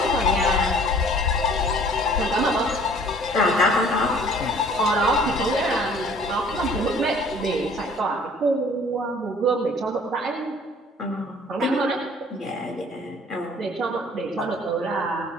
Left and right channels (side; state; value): both; normal; correlation 0.53